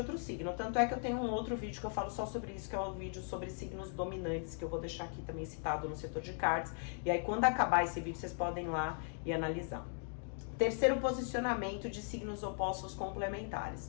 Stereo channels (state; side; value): silent; right; 52 dB below the other